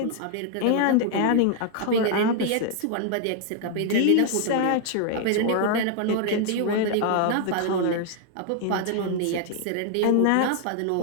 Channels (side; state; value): both; different; correlation 0.00